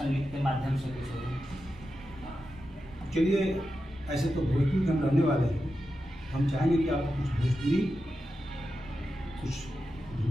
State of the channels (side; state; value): right; noise; rumble, 20 dB below the sound